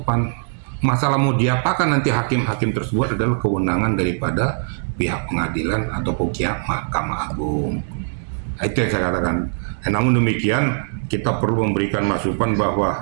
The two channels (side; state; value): left; silent; digital silence